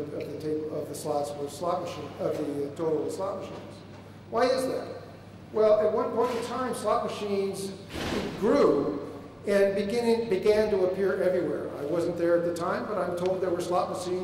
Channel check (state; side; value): identical; both; correlation 1.00